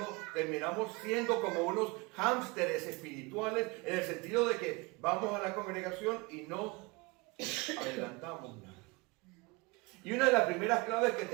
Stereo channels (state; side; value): quieter; left; 25.7 dB